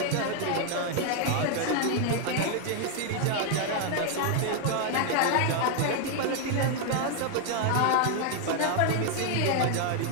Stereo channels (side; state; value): both; different; correlation 0.00